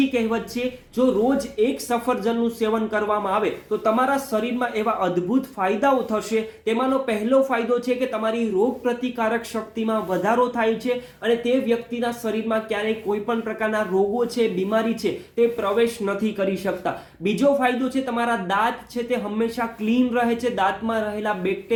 કહેવત છે. જો રોજ એક સફરજનનું સેવન કરવામાં આવે તો તમારા શરીરમાં એવા અદ્ભુત ફાયદાઓ થશે. તેમાંનો પહેલો ફાયદો છે કે તમારી રોગ પ્રતિકારક શક્તિમાં વધારો થાય છે અને તે વ્યક્તિના શરીરમાં ક્યારેય કોઈ પણ પ્રકારના રોગો છે, બીમારી છે, તે પ્રવેશ નથી કરી શકતા. બીજો ફાયદો છે તમારા દાંત છે તે હંમેશા ક્લીન રહે છે. દાંતમાં રહેલા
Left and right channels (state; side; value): identical; both; correlation 1.00